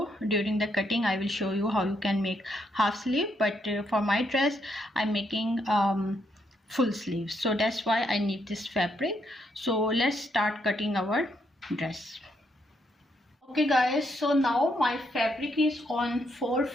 during the cutting I will show you how you can make half sleeve. But for my dress I'm making full sleeves, so that's why I need this fabric. So let's start cutting our dress. Okay guys, so now my fabric is on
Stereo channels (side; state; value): both; normal; correlation 0.76